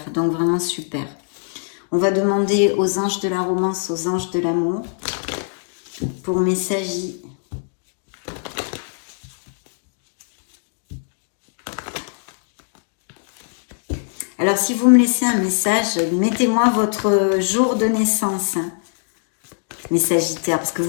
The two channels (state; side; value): silent; right; digital silence